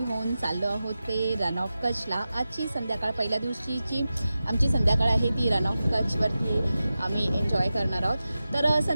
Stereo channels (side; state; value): both; inverted; correlation -0.94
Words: होऊन चाललो आहोत ते रण ऑफ कच्छला। आजची संध्याकाळ, पहिल्या दिवशीची आमची संध्याकाळ आहे ती रण ऑफ कच्छवरती आम्ही एन्जॉय करणार आहोत। तर